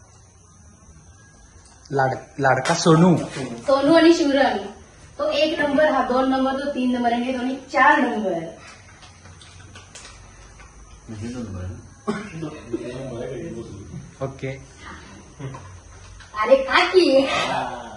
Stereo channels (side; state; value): both; identical; correlation 1.00